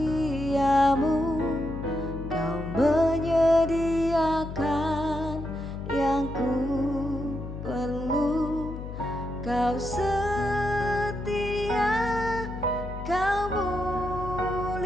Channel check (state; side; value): noise; left; hum, 9 dB below the sound